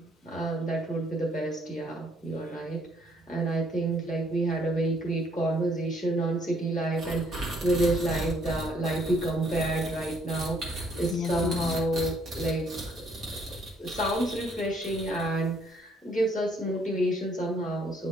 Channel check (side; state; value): both; normal; correlation 0.66